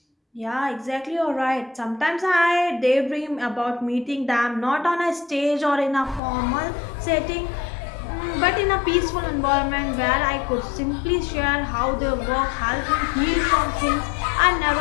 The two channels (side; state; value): right; drops out; at 6.2 s